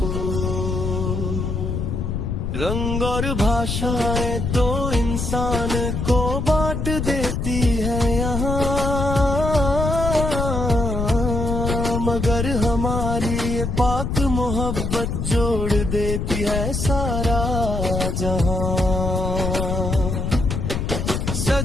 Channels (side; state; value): left; noise; rumble, 2 dB below the sound